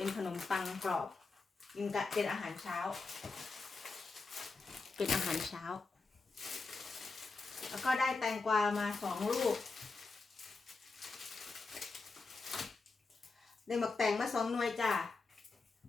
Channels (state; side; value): quieter; right; 4.0 dB